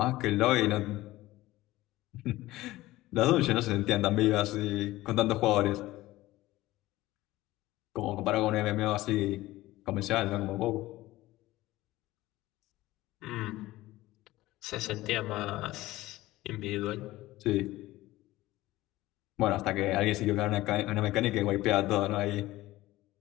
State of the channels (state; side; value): quieter; right; 17.3 dB